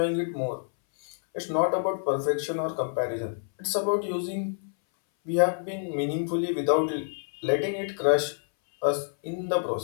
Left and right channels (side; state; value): right; silent; 60 dB below the other